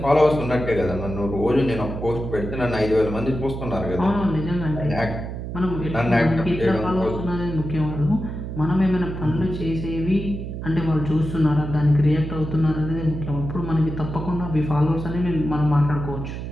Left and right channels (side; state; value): right; noise; hum, 7 dB below the sound